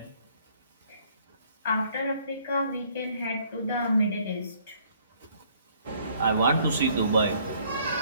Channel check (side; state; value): both; inverted; correlation -0.62